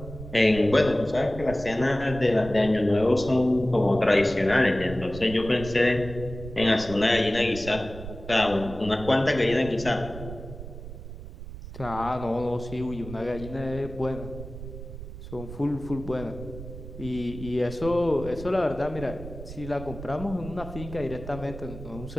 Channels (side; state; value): right; noise; rumble, 12 dB below the sound